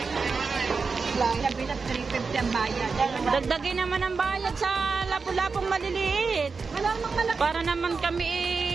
Labi na 350 ang bayad. Dagdagin naman ang bayad sa lapu-lapong maliliit. Wala namang malaki. Para naman kami,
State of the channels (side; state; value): left; quieter; 4.8 dB